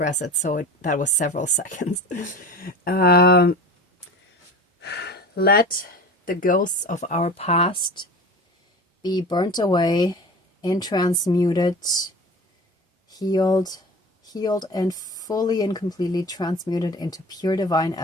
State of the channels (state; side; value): normal; both; correlation 0.36